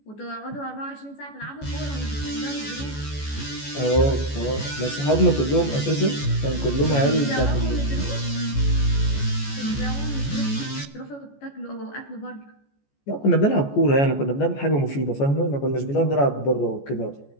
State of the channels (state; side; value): late; right; 14 ms